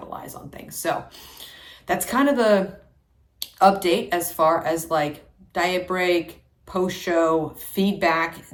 on things. So that's kind of the update as far as like diet break, post-show feedback.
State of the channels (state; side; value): identical; both; correlation 1.00